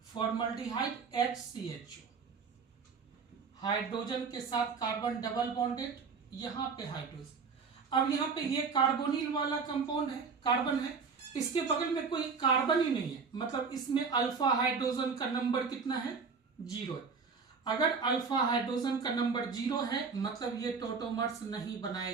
फॉर्मल्डिहाइड HCHO, हाइड्रोजन के साथ कार्बन डबल बॉन्डेड, यहां पे हाइड्रोजन। अब यहां पे ये कार्बोनिल वाला कंपाउंड है, कार्बन है, इसके बगल में कोई कार्बन ही नहीं है। मतलब इसमें अल्फा हाइड्रोजन का नंबर कितना है, 0 है। अगर अल्फा हाइड्रोजन का नंबर 0 है मतलब ये टॉटोमर्स नहीं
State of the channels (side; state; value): left; quieter; 5.3 dB